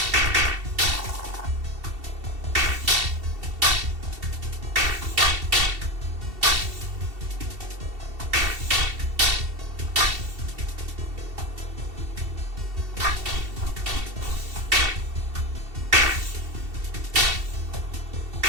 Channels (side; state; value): left; late; 2.7 ms